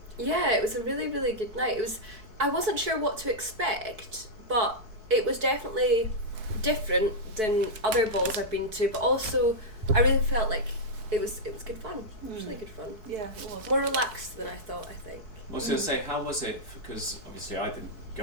Yeah, it was a really, really good night. I wasn't sure what to expect, but it was definitely different than other balls I've been to, but also I really felt like it was good fun. It was really good fun. Yeah, it was. More relaxed than I thought, I think. I was going to say, how was it, because obviously I didn't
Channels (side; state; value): left; late; 4.6 ms